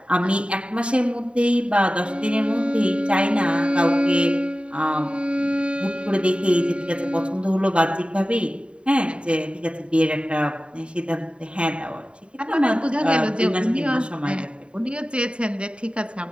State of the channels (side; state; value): left; late; 0.056 ms